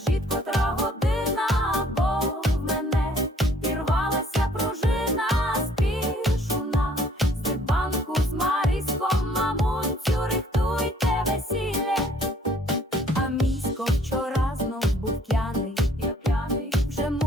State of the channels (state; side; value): normal; both; correlation 0.60